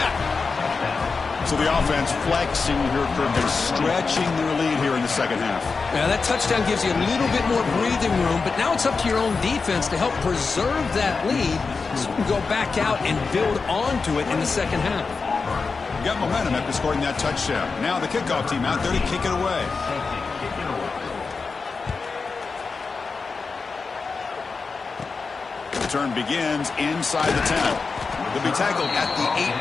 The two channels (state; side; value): quieter; right; 4.6 dB